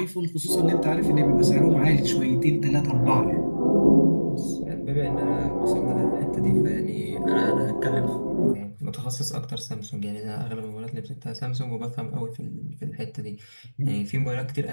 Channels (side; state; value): both; inverted; correlation -1.00